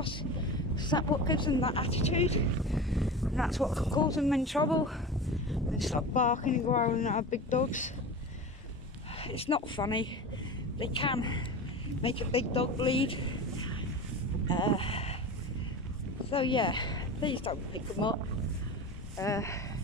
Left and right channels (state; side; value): normal; both; correlation 0.30